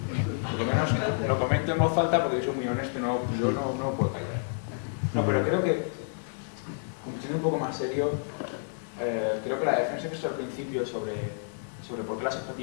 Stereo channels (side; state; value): right; silent; digital silence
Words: Por lo menos lo comento en voz alta porque yo soy muy honesto, yo no puedo callar. No, pero creo que, siendo un poco más serio, creo que la defensa que he hecho al principio sobre por qué la